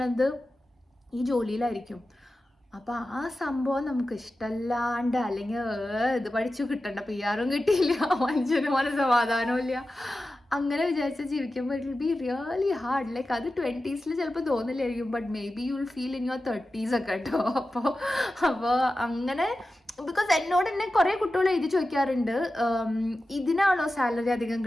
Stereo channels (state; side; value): normal; both; correlation 0.93